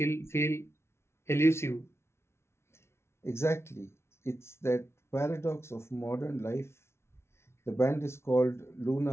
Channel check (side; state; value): right; late; 0.13 ms